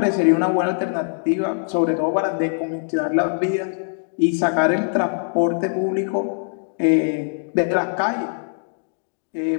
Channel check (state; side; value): silent; right; digital silence